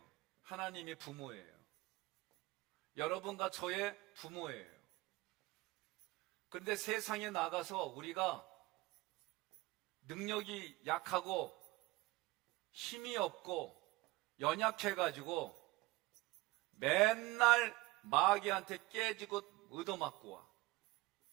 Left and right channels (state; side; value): quieter; left; 20.5 dB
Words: 하나님이 부모예요. 여러분과 저의 부모예요. 그런데 세상에 나가서 우리가 능력이 약하고 힘이 없고 연약해가지고 맨날 마귀한테 깨지고 얻어맞고 와.